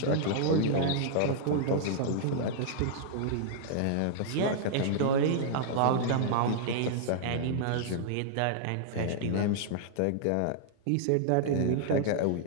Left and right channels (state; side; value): different; both; correlation -0.01